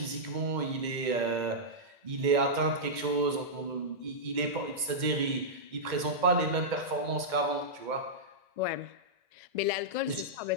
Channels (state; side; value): late; left; 2.1 ms